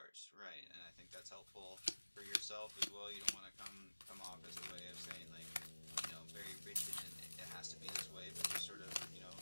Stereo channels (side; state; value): both; inverted; correlation -1.00